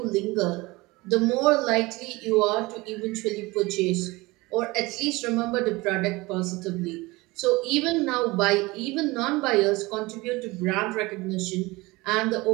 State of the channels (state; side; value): quieter; left; 22.2 dB